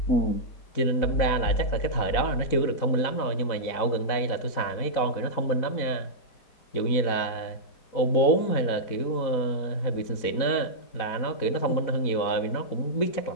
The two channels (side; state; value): right; late; 4.0 ms